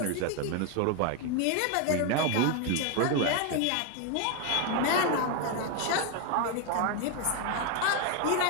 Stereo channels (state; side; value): different; both; correlation 0.01